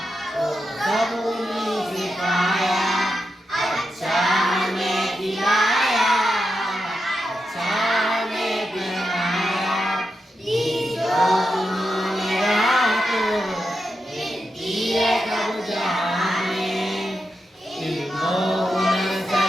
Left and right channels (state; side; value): normal; both; correlation 0.87